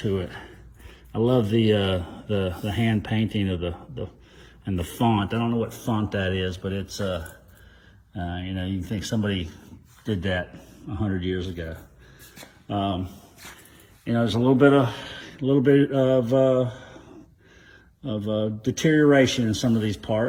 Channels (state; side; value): identical; both; correlation 1.00